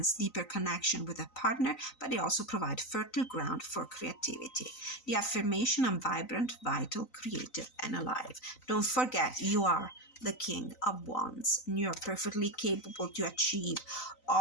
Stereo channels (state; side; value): late; right; 3.9 ms